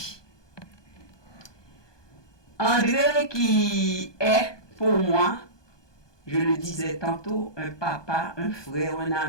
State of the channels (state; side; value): late; right; 1.2 ms